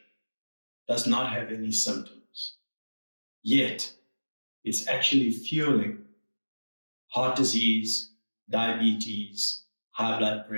does not have any symptoms, yet it's actually fueling heart disease, diabetes, high blood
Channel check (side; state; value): both; inverted; correlation -1.00